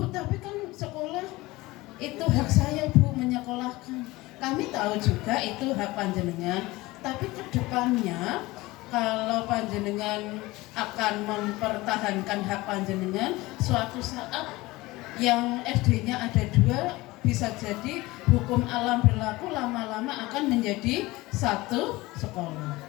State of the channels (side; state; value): right; quieter; 20.3 dB